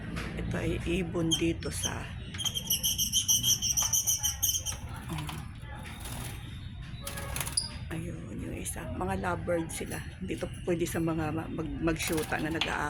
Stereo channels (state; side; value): identical; both; correlation 1.00